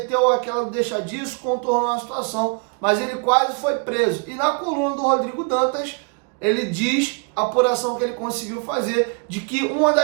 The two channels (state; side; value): quieter; left; 35.8 dB